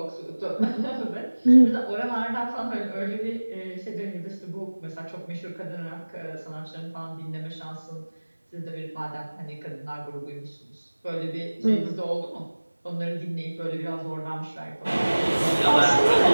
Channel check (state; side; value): inverted; both; correlation -1.00